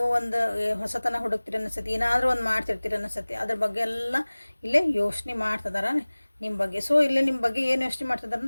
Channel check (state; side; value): inverted; both; correlation -1.00